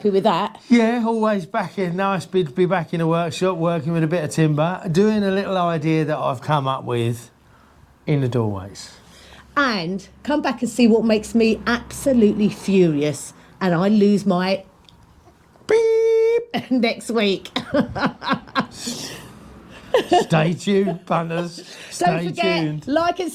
with that. Yeah, always back in. Nice to be back in the workshop, working with a bit of timber, doing a little idea that I've come up with in the doorways. And come back and see what makes me absolutely furious and I lose my beep next week. Stay tuned, punters. Don't forget, like and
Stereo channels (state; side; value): identical; both; correlation 1.00